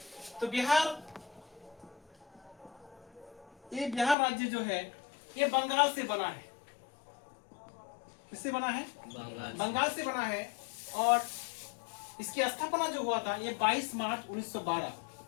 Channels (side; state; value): right; drops out; at 4.2 s